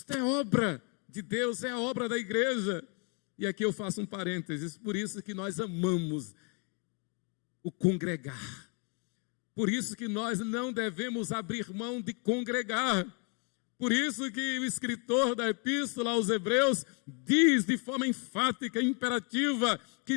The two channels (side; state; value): right; quieter; 36.9 dB